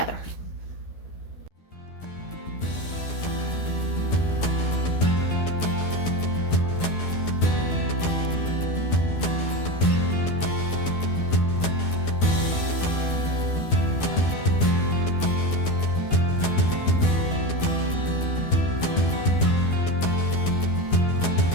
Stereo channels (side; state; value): right; late; 12 ms